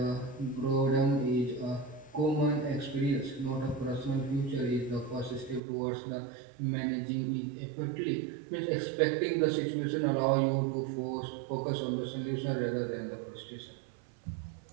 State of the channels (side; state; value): left; drops out; at 5.6 s